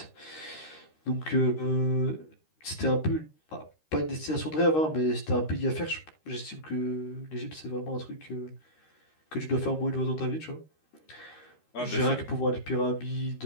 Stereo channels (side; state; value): right; late; 13 ms